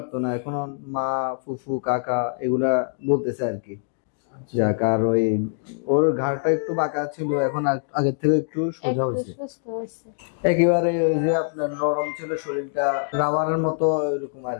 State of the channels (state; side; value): silent; right; digital silence